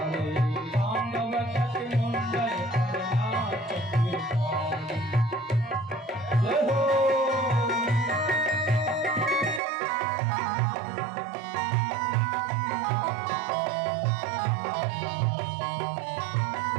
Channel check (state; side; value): drops out; left; at 9.6 s